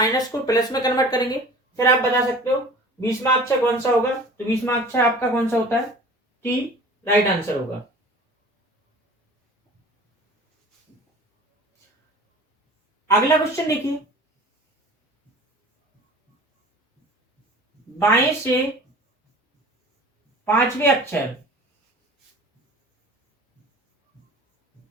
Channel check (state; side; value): normal; both; correlation 0.42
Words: को प्लस में कन्वर्ट करेंगे, फिर आप बता सकते हो 20वां अक्षर कौन सा होगा, तो 20वां अक्षर आपका कौन सा होता है, टी राइट आंसर होगा। अगला क्वेश्चन देखिए, बाएं से 5वें अक्षर